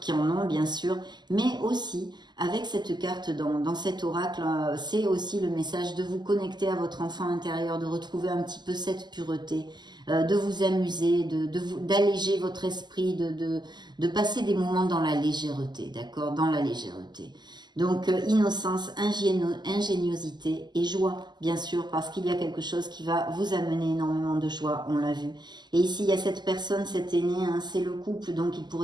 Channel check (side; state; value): left; late; 0.21 ms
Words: qui en ont bien sûr, mais aussi avec cette carte dans cet oracle, c'est aussi le message de vous connecter à votre enfant intérieur, de retrouver un petit peu cette pureté, de vous amuser, d'alléger votre esprit, de passer des moments dans la légèreté, d'accord, dans la légèreté. Donc, innocence, ingéniosité et joie, bien sûr, parce qu'il y a quelque chose qui va vous amener énormément de joie, on l'a vu. Et ici, il y a cette personne, cet aîné, hein, c'est le couple, donc il